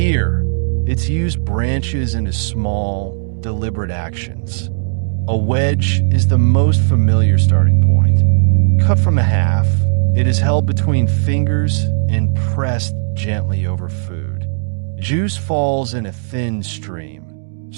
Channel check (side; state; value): left; silent; digital silence